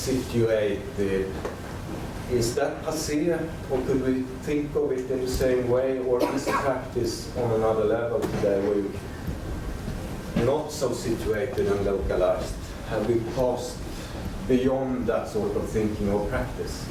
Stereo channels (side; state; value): both; identical; correlation 1.00